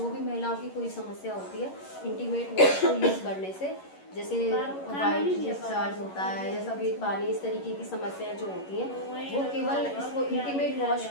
भी महिलाओं की कोई समस्या होती है, इंटीमेट वॉश को यूज़ करने से, जैसे वाइट डिस्चार्ज होता है या सफ़ेद पानी, इस तरीके की समस्याएं जो होती हैं, वो केवल इसको इंटीमेट वॉश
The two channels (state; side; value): late; right; 11 ms